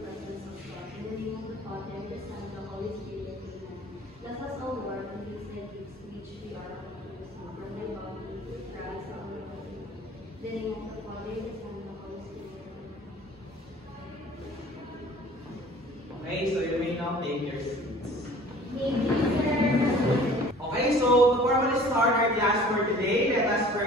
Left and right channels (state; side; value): normal; both; correlation 0.48